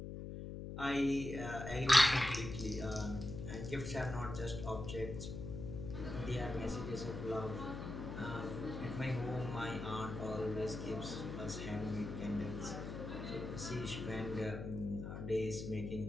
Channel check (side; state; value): left; noise; hum, 7 dB below the sound